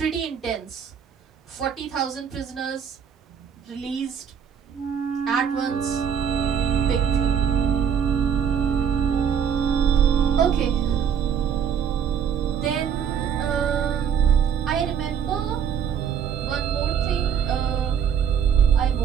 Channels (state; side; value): quieter; left; 7.9 dB